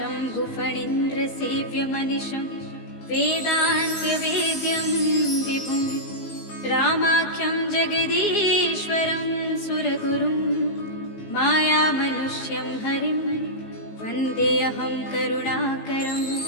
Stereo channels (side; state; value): right; late; 19 ms